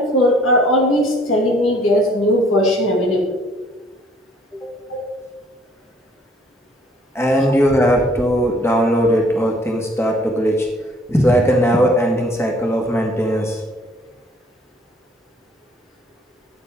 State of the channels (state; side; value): normal; both; correlation 0.59